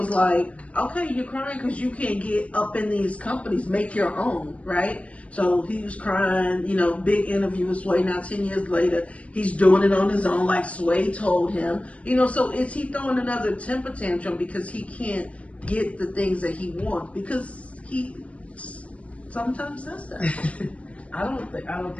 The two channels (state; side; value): late; right; 0.064 ms